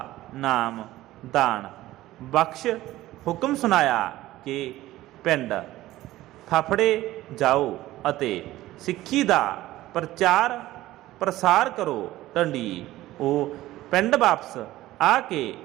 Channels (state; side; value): quieter; left; 16.0 dB